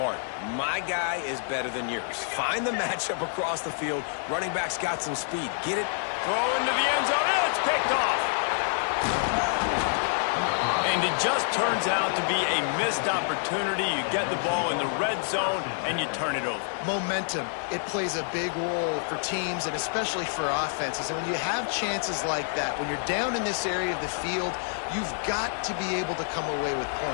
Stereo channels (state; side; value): silent; right; digital silence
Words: My guy is better than yours. Find the matchup across the field. Running back's got some speed. Get it? Throw into the end zone. And it's picked off. And it just turns out to be a missed opportunity. You get the ball in the red zone, and you turn it over. Momentum, it plays a big role for teams and especially for offenses. And when you have chances like that, when you're down in this area of the field, you've got to be able to come away with